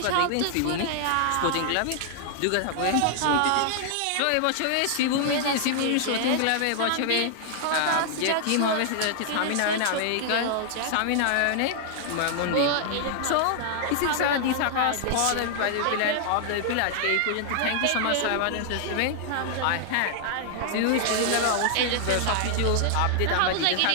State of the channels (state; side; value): different; both; correlation 0.00